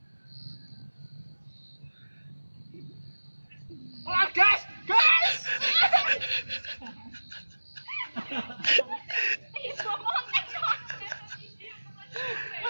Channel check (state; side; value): inverted; both; correlation -1.00